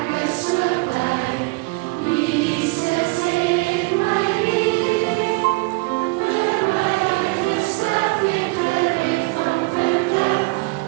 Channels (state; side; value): quieter; left; 27.2 dB